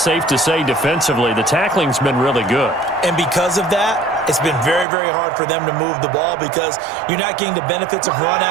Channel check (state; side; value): drops out; left; at 4.9 s